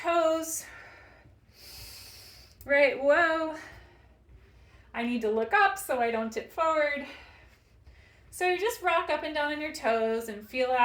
Right, whoa. I need to look up so I don't tip forward. So you just rock up and down on your toes and feel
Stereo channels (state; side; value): identical; both; correlation 1.00